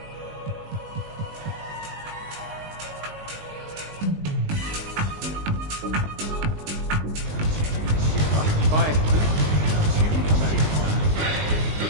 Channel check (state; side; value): late; left; 19 ms